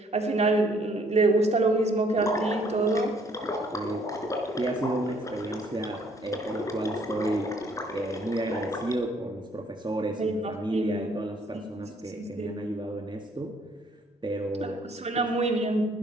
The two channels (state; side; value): normal; both; correlation 0.63